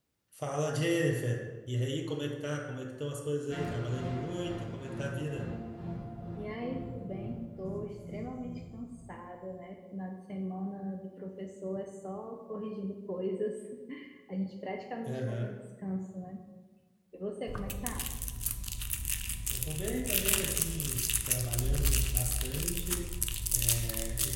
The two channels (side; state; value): both; identical; correlation 1.00